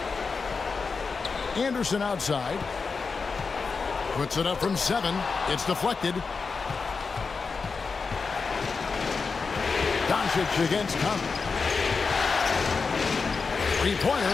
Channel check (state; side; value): quieter; right; 4.8 dB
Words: Anderson outside. Puts it up from 7. It's deflected. Doncic against Conley.